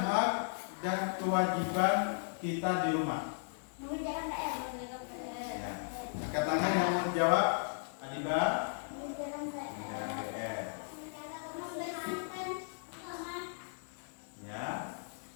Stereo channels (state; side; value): silent; right; 54 dB below the other